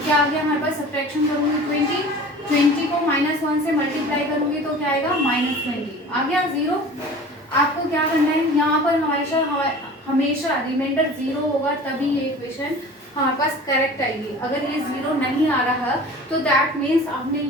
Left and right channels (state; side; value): normal; both; correlation 0.41